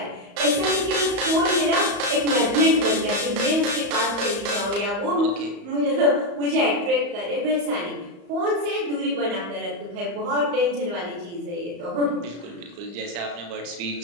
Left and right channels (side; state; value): left; late; 35 ms